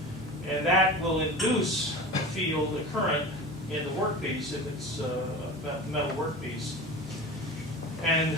and that will induce a field, a current, in the workpiece if it's a metal workpiece. And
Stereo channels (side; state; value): both; normal; correlation 0.32